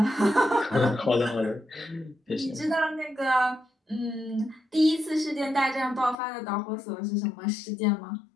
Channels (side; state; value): right; drops out; at 6.2 s